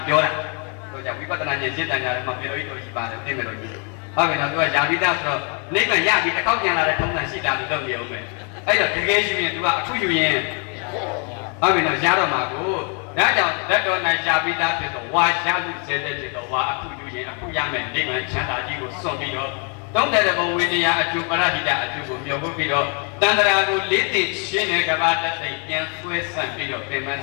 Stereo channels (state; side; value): quieter; right; 37.8 dB